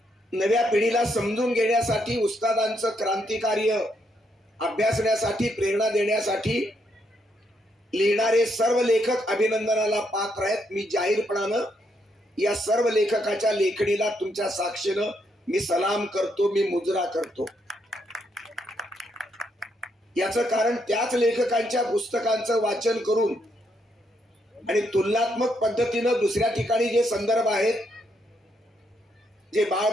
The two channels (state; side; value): normal; both; correlation 0.76